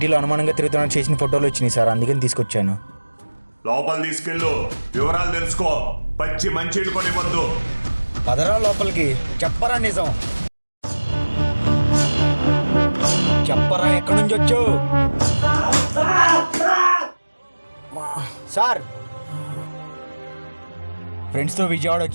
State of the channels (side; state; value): both; inverted; correlation -1.00